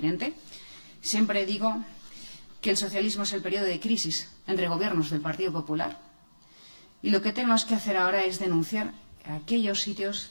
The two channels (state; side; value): inverted; both; correlation -1.00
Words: Siempre digo que el socialismo es el periodo de crisis entre gobiernos del Partido Popular. Y lo que tenemos que hacer ahora es denunciar aquellos sitios